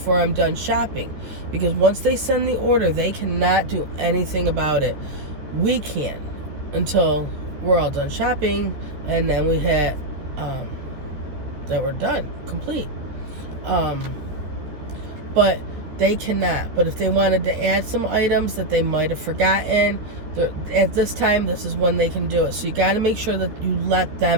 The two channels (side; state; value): left; late; 13 ms